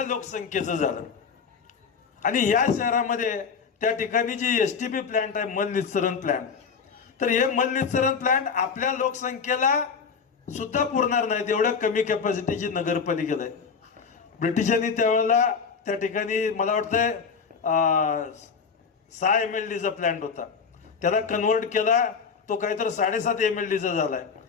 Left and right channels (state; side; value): quieter; right; 5.8 dB